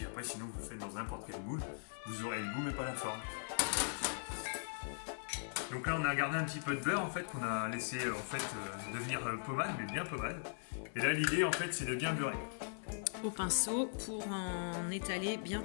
après, sinon, vous le faites dans n'importe quel moule. Vous aurez le goût, mais pas la forme. Donc là, on a gardé un petit peu de beurre, en fait, qu'on a laissé devenir pommade, mais bien pommade. Et là, l'idée, en fait, c'est de bien beurrer. Au pinceau pour en étaler bien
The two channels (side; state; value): right; silent; 51 dB below the other